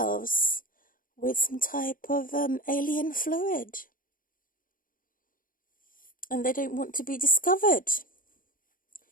with some type of alien fluid, and they don't want to be discovered,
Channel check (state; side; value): late; right; 0.40 ms